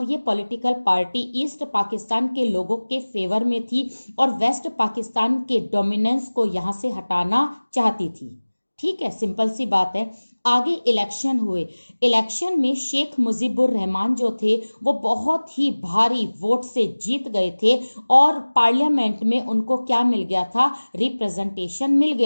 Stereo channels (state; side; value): inverted; both; correlation -1.00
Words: ये पॉलिटिकल पार्टी ईस्ट पाकिस्तान के लोगों के फेवर में थी और वेस्ट पाकिस्तान के डोमिनेंस को यहां से हटाना चाहती थी। ठीक है, सिंपल सी बात है। आगे इलेक्शन हुए। इलेक्शन में शेख मुजीबुर रहमान जो थे वो बहुत ही भारी वोट से जीत गए थे और पार्लियामेंट में उनको क्या मिल गया था, रिप्रेजेंटेशन मिल